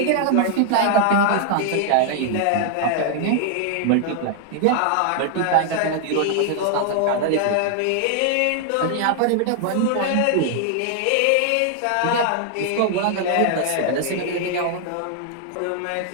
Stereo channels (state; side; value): different; both; correlation 0.00